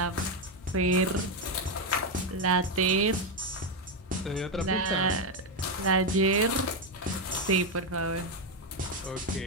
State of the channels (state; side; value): normal; both; correlation 0.05